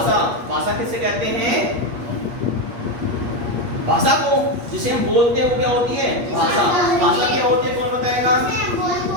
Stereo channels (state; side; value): late; left; 8.4 ms